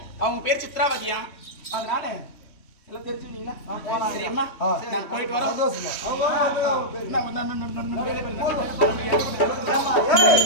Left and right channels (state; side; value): late; right; 3.1 ms